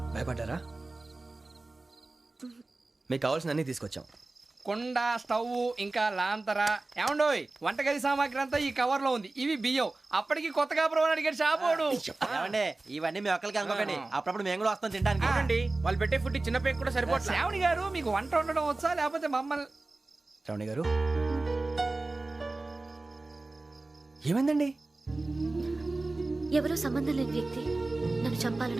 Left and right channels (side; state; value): left; quieter; 3.2 dB